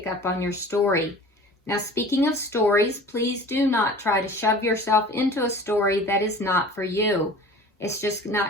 up on your story. Now, speaking of stories, please do not try to shove yourself into a story that is not for you. It's just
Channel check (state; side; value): normal; both; correlation 0.42